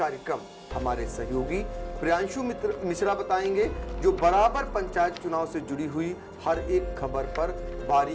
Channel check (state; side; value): identical; both; correlation 1.00